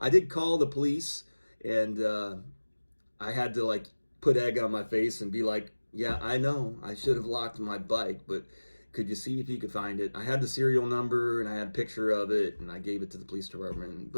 did call the police, and I had to like put egg on my face and be like, yeah, I know I should have locked my bike, but could you see if you could find it? I had the serial number, and I had a picture of it, and I gave it to the police department,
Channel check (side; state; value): both; inverted; correlation -1.00